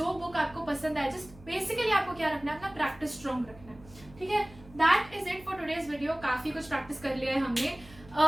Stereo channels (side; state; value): right; noise; hum, 21 dB below the sound